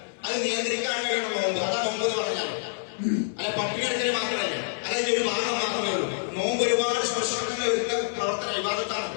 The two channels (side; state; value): right; silent; 60 dB below the other